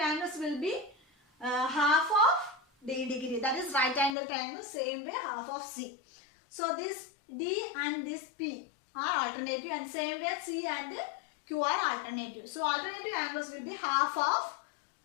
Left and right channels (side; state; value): right; drops out; at 4.2 s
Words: will be half of D degree. That is right angle triangle. Same way half of C. So this D and this P are alternative, and same way C and Q are alternative. So alternative angles will be half of